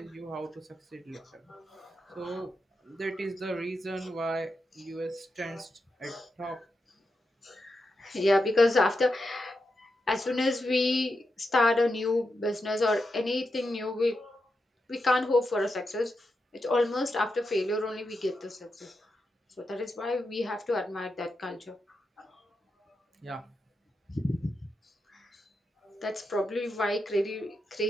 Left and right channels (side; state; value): both; normal; correlation 0.86